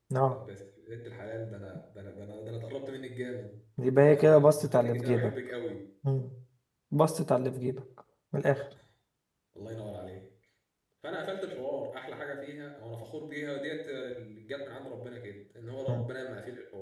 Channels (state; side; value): identical; both; correlation 1.00